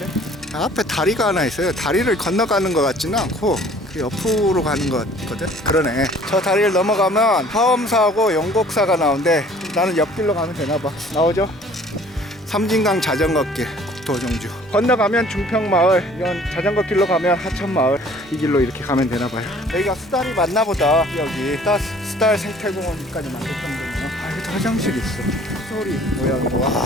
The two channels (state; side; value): normal; both; correlation 0.53